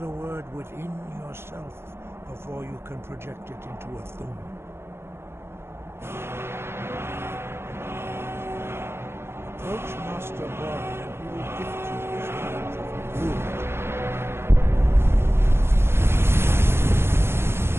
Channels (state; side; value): late; left; 0.12 ms